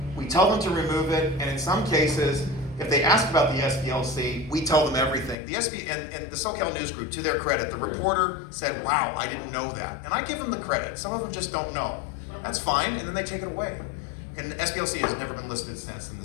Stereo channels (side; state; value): right; drops out; at 5.4 s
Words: We tell them to remove it, and in some cases, if they ask about the SPLC, we tell them everything. The and the SoCal News Group, to their credit, the reporter said, wow, I didn't know that. And I give them the credit. Some of them just don't know. That's fine, and then they take it away. And the SPLC has never been listed since in the